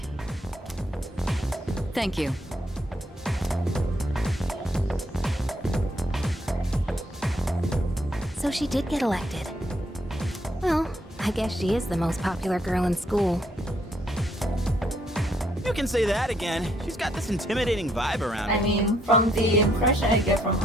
Thank you. So she did get elected. Well, I guess she is the most popular girl in school. You can say that again. She's got this intimidating vibe around her. I mean, from the impression I get from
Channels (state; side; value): normal; both; correlation 0.72